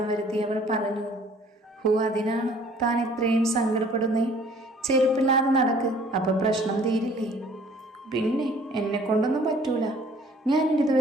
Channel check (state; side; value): normal; both; correlation 0.55